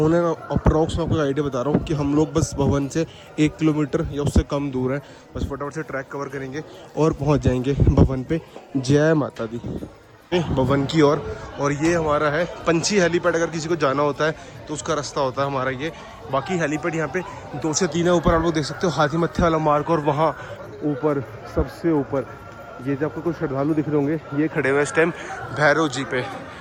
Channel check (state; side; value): identical; both; correlation 1.00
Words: एंड अप्रॉक्स में आपको आइडिया बता रहा हूँ कि हम लोग बस भवन से 1 किलोमीटर या उससे कम दूर है। बस फटाफट से ट्रैक कवर करेंगे और पहुँच जाएंगे भवन पे। जय माता दी। भवन की ओर, और ये हमारा है पंछी हेलीपैड। अगर किसी को जाना होता है तो उसका रास्ता होता है हमारा ये। बाकी हेलीपैड यहाँ पे 2 से 3 है। ऊपर आप लोग देख सकते हो हाथी मत्थे वाला मार्ग, और वहाँ ऊपर सबसे ऊपर ये जो आपको कुछ श्रद्धालु दिख रहे होंगे, ये खड़े हुए इस टाइम भैरव जी पे।